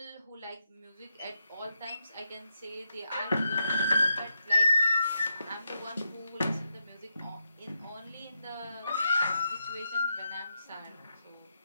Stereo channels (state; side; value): inverted; both; correlation -0.86